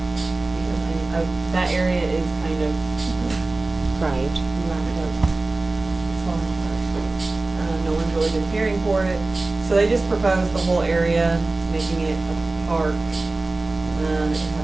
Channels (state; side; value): quieter; left; 3.2 dB